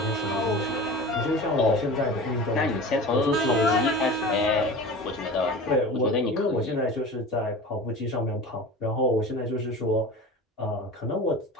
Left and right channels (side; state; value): both; normal; correlation 0.35